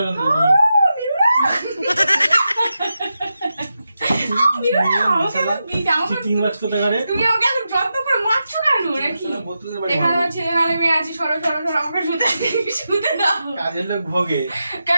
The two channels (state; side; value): inverted; both; correlation -0.89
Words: তুমি আমাকে এখন যত্ন করে মারছো কেন নাকি? এখানে আমার ছেলে নালে মেয়ে আছে, সরো সরো সরো আমাকে শুতে দাও। কাজের লোক ভোগে